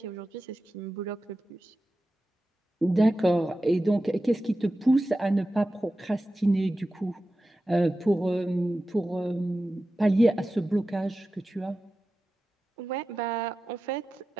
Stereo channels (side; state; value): both; normal; correlation 0.93